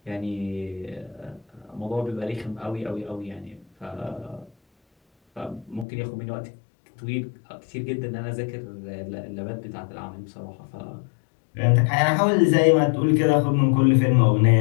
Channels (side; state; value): right; drops out; at 5.9 s